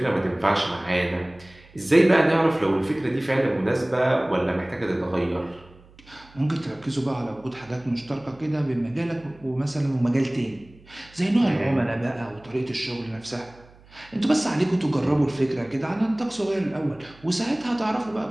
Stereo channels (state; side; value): noise; right; hum, 25 dB below the sound